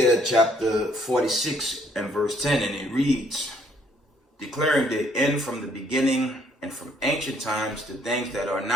chapter 46 and verse 10, and it reads, declaring the end from the beginning and from ancient times the things that are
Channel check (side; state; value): both; normal; correlation 0.65